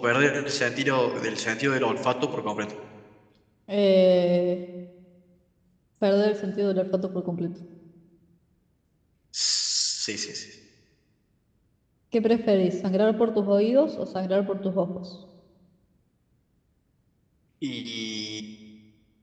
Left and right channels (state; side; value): identical; both; correlation 1.00